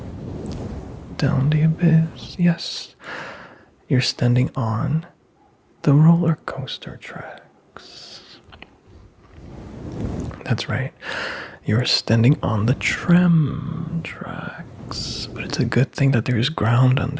down the abyss. Yes, you're standing on the roller coaster tracks. That's right. You're standing on the tram tracks, but it's a good thing that there's ground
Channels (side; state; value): both; identical; correlation 1.00